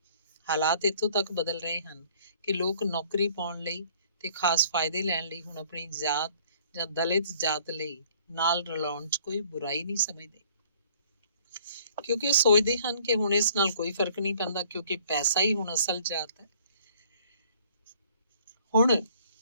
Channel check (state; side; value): inverted; both; correlation -0.57